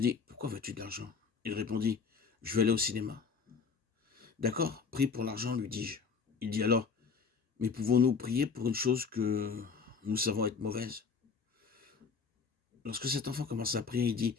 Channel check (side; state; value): right; quieter; 5.5 dB